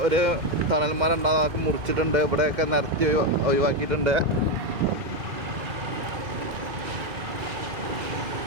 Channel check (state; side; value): late; left; 2.1 ms